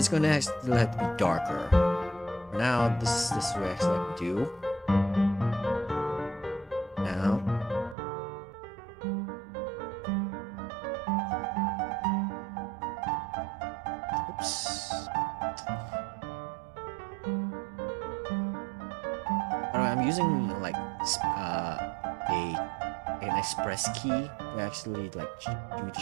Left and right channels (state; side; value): drops out; left; at 8.0 s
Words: going to have to be darker. For now, this is what I actually have to do. Now. Oops. I'm using like an express key to actually like do the